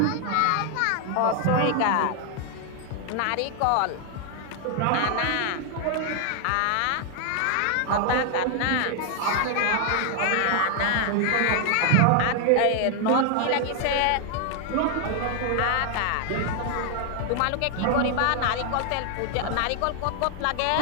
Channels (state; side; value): different; both; correlation 0.00